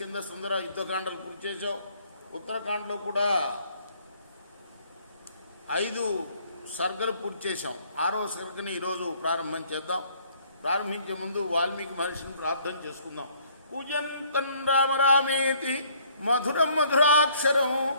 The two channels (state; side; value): inverted; both; correlation -0.61